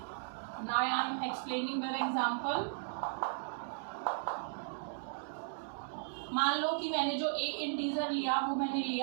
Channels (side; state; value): left; silent; digital silence